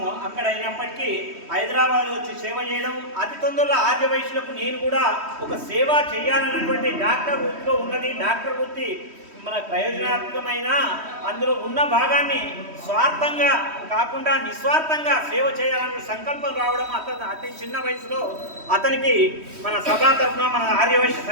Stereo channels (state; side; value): late; left; 3.1 ms